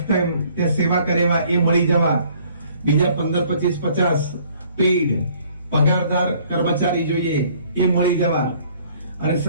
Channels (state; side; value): inverted; both; correlation -0.59